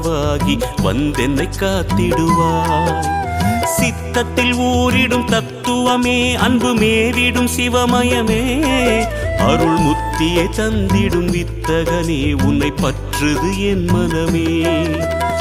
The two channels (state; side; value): identical; both; correlation 1.00